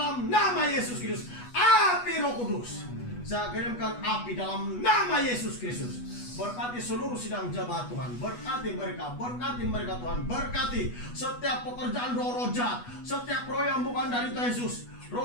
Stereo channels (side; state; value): right; late; 8.2 ms